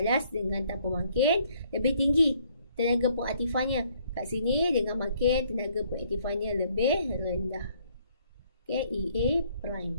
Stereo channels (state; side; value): inverted; both; correlation -0.65